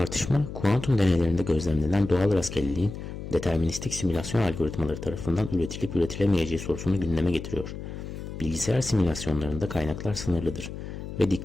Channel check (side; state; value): left; noise; hum, 9 dB below the sound